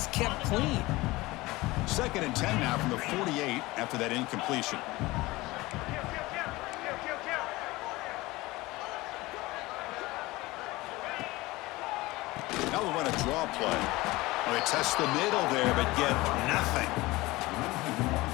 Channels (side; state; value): right; quieter; 20.3 dB